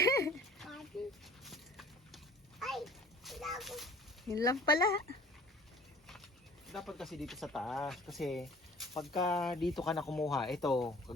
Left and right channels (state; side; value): normal; both; correlation 0.49